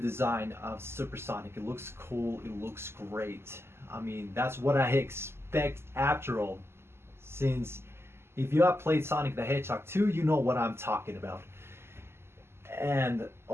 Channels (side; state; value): left; late; 0.12 ms